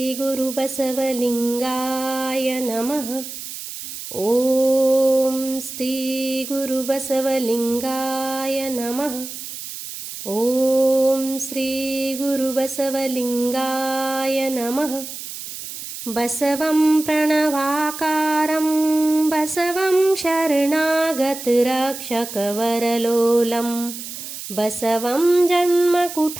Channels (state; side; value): noise; right; hiss, 10 dB below the sound